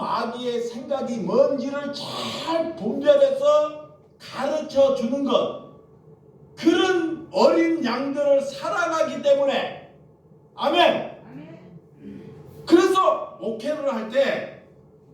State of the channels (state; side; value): identical; both; correlation 1.00